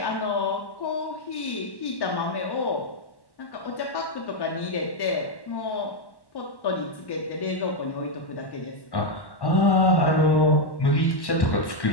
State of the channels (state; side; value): late; right; 1.1 ms